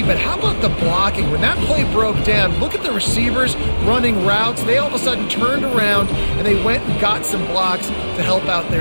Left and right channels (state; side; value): inverted; both; correlation -1.00